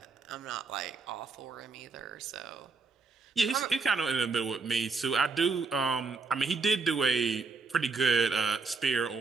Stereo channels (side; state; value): left; quieter; 4.4 dB